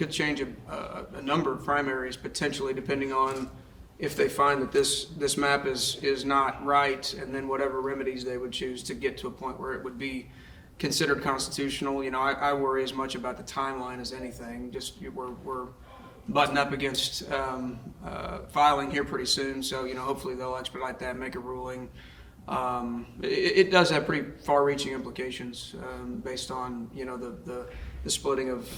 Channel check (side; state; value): both; identical; correlation 1.00